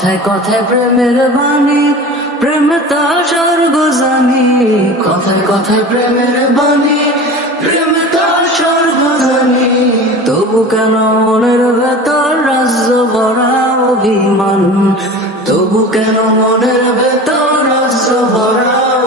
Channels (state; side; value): normal; both; correlation 0.35